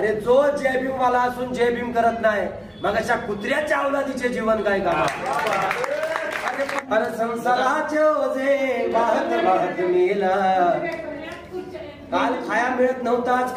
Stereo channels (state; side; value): identical; both; correlation 1.00